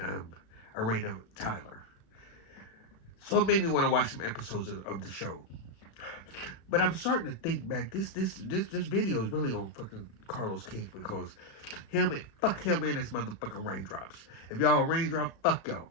Arena Tyler. So it made me want to watch some episodes of the show. But I'm starting to think back. This video is really on fucking Carlos King because fuck him and his motherfucking raindrops. If y'all raindrop, fuck y'all.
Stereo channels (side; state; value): right; late; 36 ms